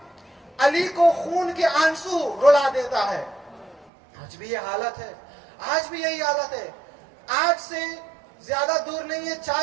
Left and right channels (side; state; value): left; drops out; at 3.9 s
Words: علی کو خون کے آنسو رلا دیتا ہے. آج بھی یہ حالت ہے, آج بھی یہی حالت ہے. آج سے زیادہ دور نہیں ہے,